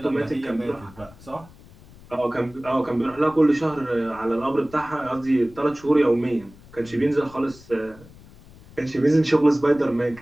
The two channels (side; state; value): left; noise; rumble, 22 dB below the sound